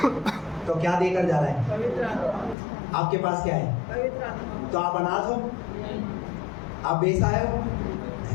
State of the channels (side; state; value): right; drops out; at 2.6 s